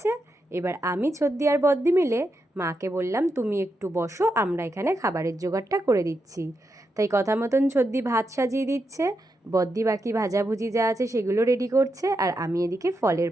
এবার আমি, ছদ্দি আর বদ্দি মিলে মাকে বললাম তুমি একটু বসো, আমরা এখানে খাবারের জোগাড়টা করে দিচ্ছি। তাই কথা মতন ছদ্দি ভাত সাজিয়ে দিচ্ছে, বদ্দি বাকি ভাজাভুজি যা আছে সেগুলো রেডি করছে, আর আমি এদিকে ফলের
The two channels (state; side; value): normal; both; correlation 0.85